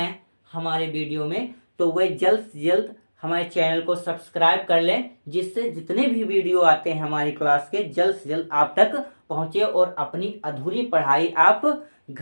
हमारे वीडियो में, तो वह जल्द से जल्द हमारे चैनल को सब्सक्राइब कर लें, जिससे जितने भी वीडियो आते हैं हमारी क्लास के जल्द से जल्द आप तक पहुंचे और अपनी अधूरी पढ़ाई आप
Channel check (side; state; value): both; inverted; correlation -1.00